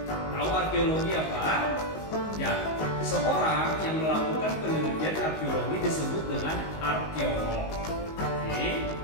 Tahu arkeologi apa? Ya, seorang yang melakukan penelitian arkeologi disebut dengan arkeolog. Oke,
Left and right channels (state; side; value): late; right; 19 ms